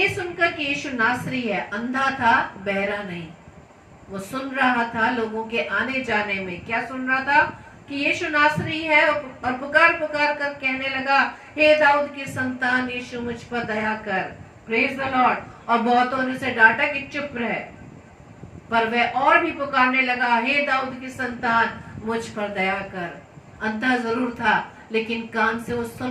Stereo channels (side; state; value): both; identical; correlation 1.00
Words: सुनकर कि यीशु नासरी है, अंधा था बहरा नहीं, वो सुन रहा था लोगों के आने जाने में। क्या सुन रहा था? कि यीशु नासरी है, और पुकार पुकार कर कहने लगा हे दाऊद की संतान यीशु मुझ पर दया कर। Praise the Lord. और बहुतों ने उसे डांटा कि चुप रहे, पर वह और भी पुकारने लगा हे दाऊद की संतान मुझ पर दया कर। अंधा जरूर था, लेकिन कान से वो